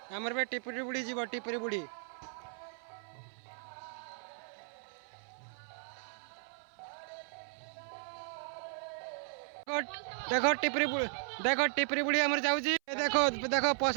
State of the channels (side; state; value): left; silent; 54 dB below the other